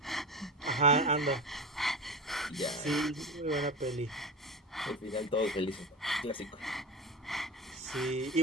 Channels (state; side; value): normal; both; correlation 0.25